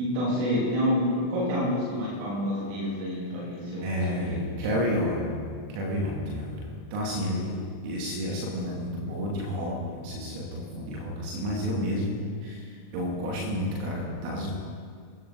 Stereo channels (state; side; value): late; left; 40 ms